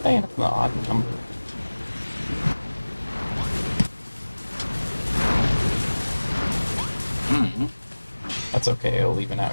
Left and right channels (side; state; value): both; inverted; correlation -1.00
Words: I end up in the odd number? Mm-hmm. That's okay, I'll even